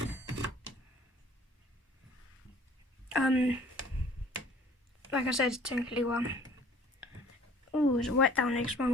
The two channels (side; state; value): both; normal; correlation 0.53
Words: Like I said, it's technically one. Oh, it's wet down there because my